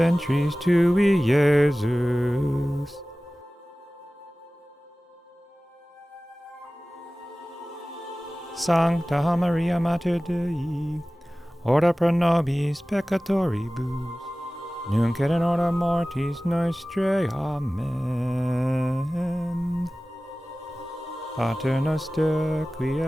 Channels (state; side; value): normal; both; correlation 0.97